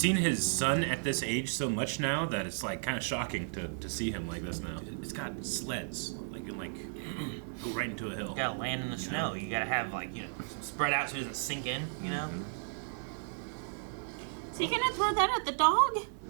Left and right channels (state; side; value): silent; left; 55 dB below the other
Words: his son at this age so much now that it's like kind of shocking to see him like this now. It's got sleds. Like, you can go right into a hill. You gotta land in the snow. You gotta have, like, spread out so it doesn't sink in, you know? So you gonna throw that at the dog?